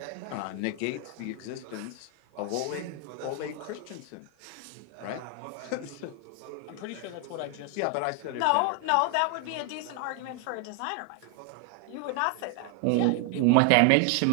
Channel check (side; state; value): both; different; correlation 0.00